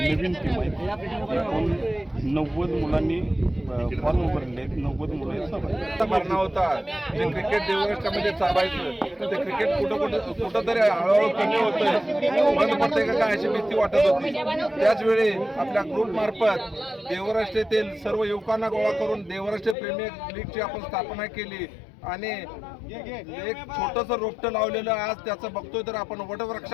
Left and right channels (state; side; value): drops out; right; at 19.8 s